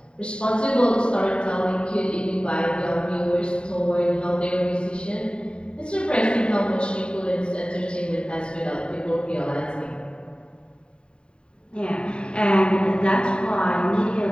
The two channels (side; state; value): right; late; 0.052 ms